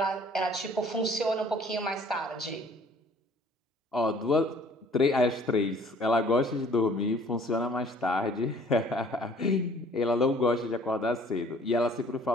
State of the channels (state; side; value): normal; both; correlation 0.55